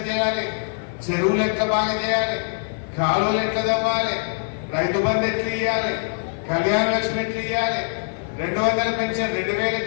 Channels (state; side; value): silent; right; 63 dB below the other